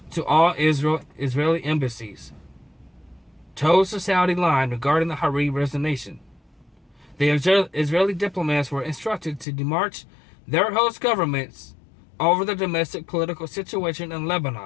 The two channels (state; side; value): drops out; right; at 9.5 s